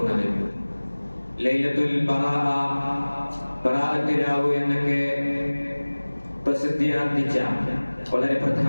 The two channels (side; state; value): both; inverted; correlation -1.00